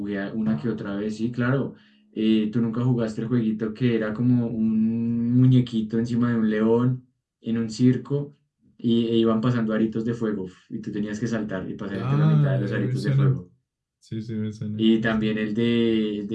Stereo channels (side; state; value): both; identical; correlation 1.00